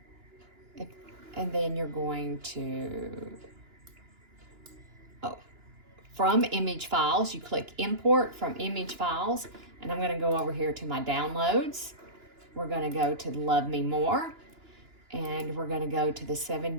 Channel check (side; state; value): left; late; 2.9 ms